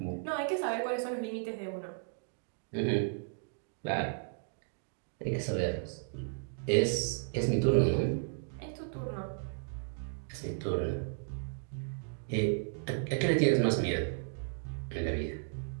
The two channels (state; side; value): silent; left; digital silence